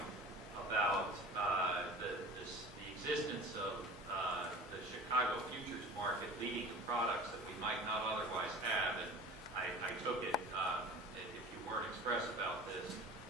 about the existence of the Chicago futures market leading to products that we might not otherwise have. And I took it, if you weren't express about this,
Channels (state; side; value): normal; both; correlation 0.39